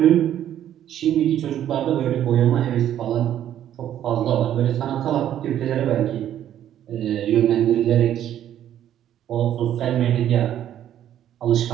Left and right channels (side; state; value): left; quieter; 11.1 dB